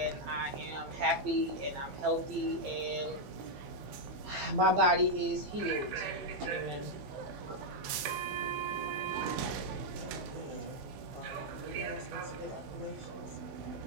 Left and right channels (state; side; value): late; left; 15 ms